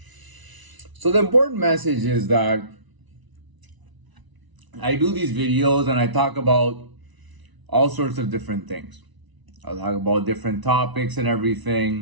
So the important message is that I do these videos and I talk about all sorts of different things. I'll talk about different topics and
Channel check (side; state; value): left; late; 1.0 ms